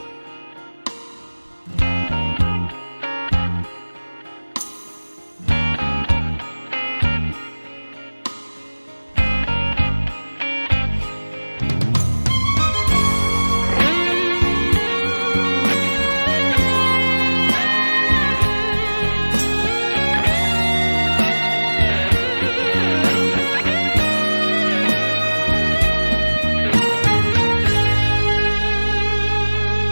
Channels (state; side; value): inverted; both; correlation -1.00